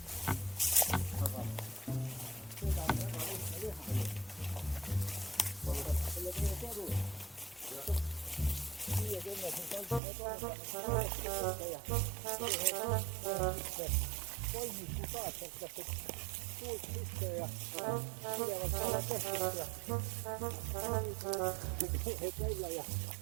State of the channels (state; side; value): drops out; left; at 10.0 s